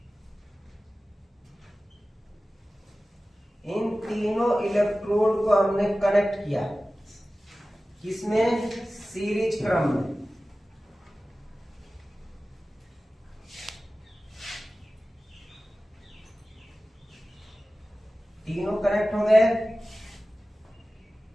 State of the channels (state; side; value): normal; both; correlation 0.96